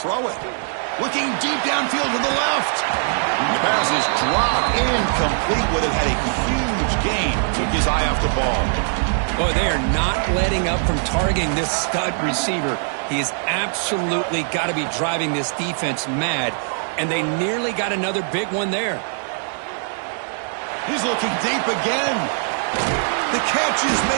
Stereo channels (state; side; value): silent; left; digital silence